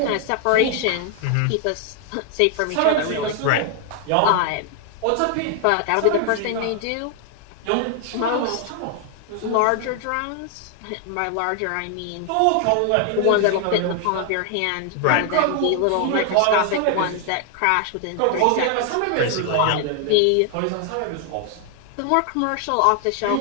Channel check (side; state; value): both; different; correlation 0.00